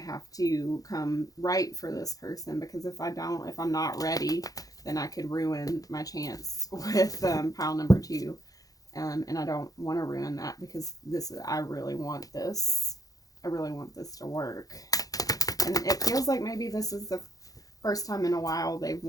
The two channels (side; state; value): right; late; 0.17 ms